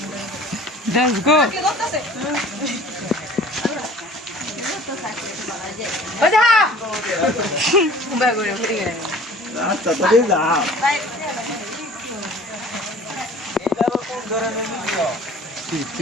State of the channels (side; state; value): both; normal; correlation 0.47